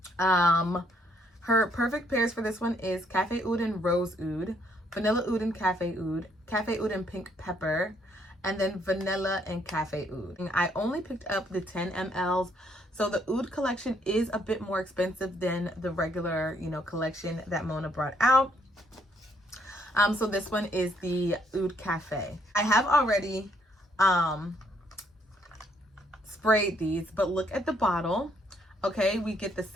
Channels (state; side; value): normal; both; correlation 0.69